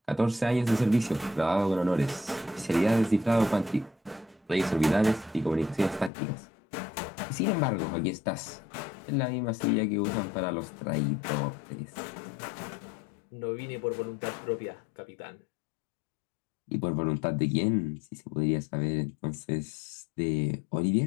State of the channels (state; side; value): drops out; right; at 6.1 s